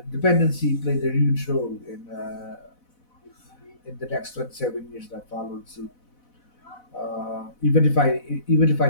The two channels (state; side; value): late; right; 4.0 ms